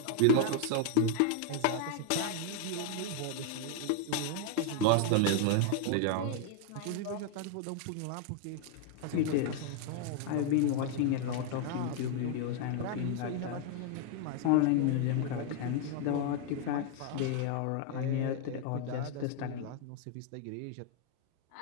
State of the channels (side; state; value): both; different; correlation 0.00